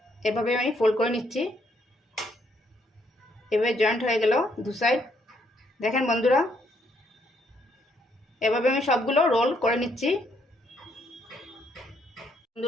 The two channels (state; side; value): normal; both; correlation 0.72